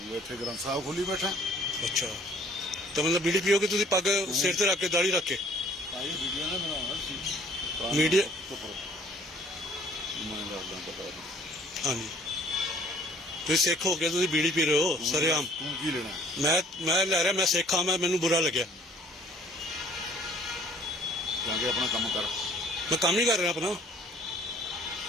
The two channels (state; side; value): normal; both; correlation 0.56